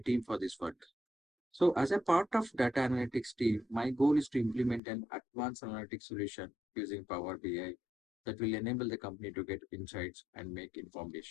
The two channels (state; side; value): drops out; right; at 4.8 s